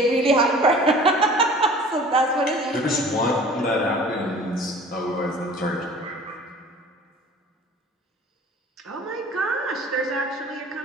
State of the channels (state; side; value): normal; both; correlation 0.46